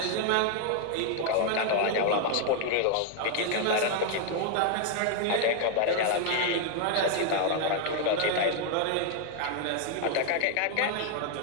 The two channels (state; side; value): different; both; correlation 0.00